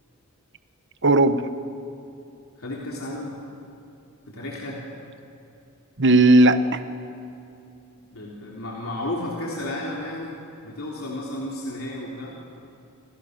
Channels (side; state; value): both; normal; correlation 0.33